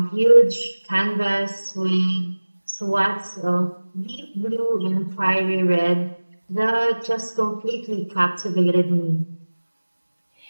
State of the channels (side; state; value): both; inverted; correlation -1.00